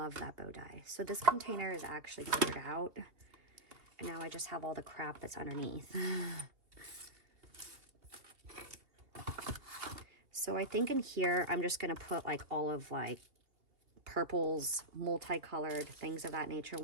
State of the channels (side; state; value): left; late; 2.5 ms